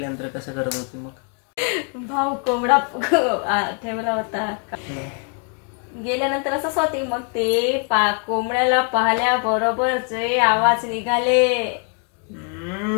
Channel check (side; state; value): right; quieter; 38.7 dB